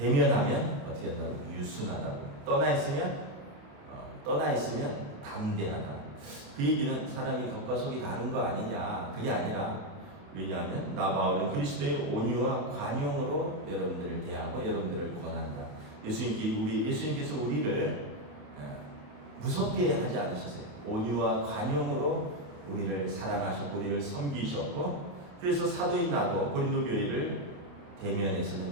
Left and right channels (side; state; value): left; late; 28 ms